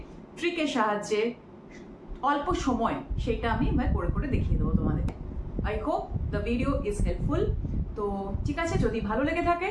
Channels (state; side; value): identical; both; correlation 1.00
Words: ট্রিকের সাহায্যে, অল্প সময়, সেটা আমি করে করে দেখিয়ে দেবো তোমাদের। I hope the video is helpful. তো ঠিক আছে, যদি ভালো লেগে থাকে